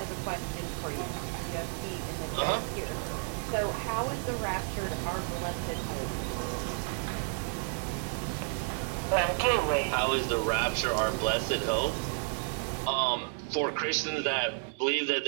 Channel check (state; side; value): silent; left; 57 dB below the other